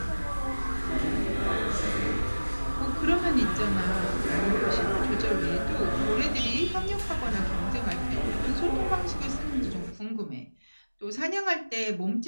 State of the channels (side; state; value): both; inverted; correlation -1.00